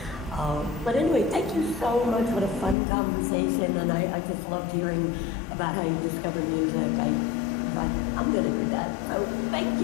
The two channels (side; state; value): right; drops out; at 2.8 s